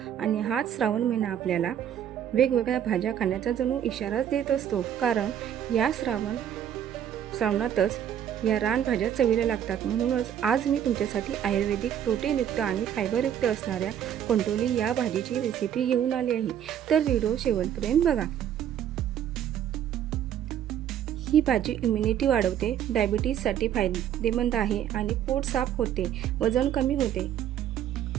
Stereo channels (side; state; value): left; quieter; 9.9 dB